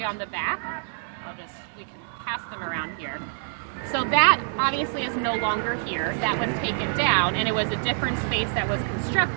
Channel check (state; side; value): silent; left; digital silence